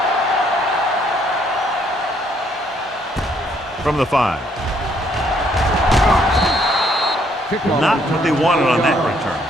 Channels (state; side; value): normal; both; correlation 0.68